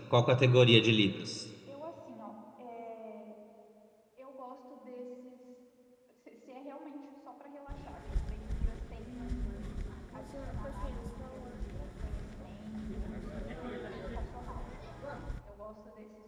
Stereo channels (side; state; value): both; identical; correlation 1.00